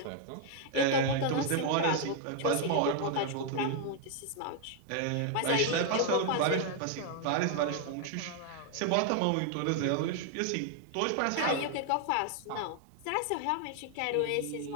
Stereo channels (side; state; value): both; different; correlation 0.00